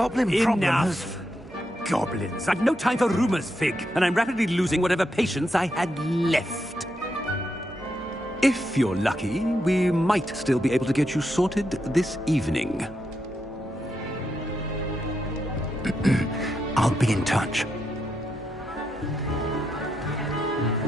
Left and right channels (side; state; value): right; noise; hum, 21 dB below the sound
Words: problem has... Enough. Goblins. I've no time for rumors, Fig, and I'm rapidly losing whatever patience I had left. If you're lucky, we might still be able to get you sorted this evening. I'll be in touch.